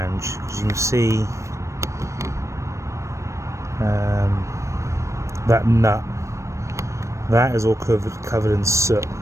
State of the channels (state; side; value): late; left; 0.15 ms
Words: because you can see that nut, that is all covered in soot,